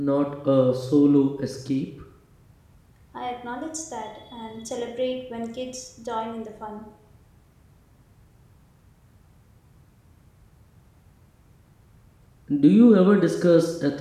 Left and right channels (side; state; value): both; identical; correlation 1.00